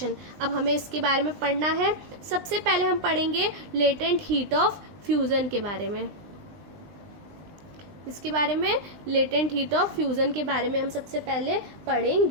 अब हमें इसके बारे में पढ़ना है। सबसे पहले हम पढ़ेंगे लेटेंट हीट ऑफ फ्यूजन के बारे में। इसके बारे में, लेटेंट हीट ऑफ फ्यूजन के बारे में हम सबसे पहले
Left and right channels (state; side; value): late; left; 19 ms